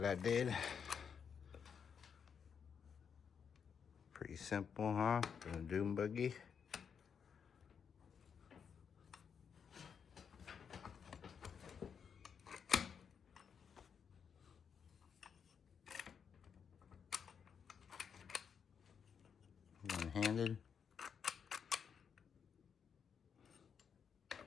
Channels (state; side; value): quieter; right; 6.9 dB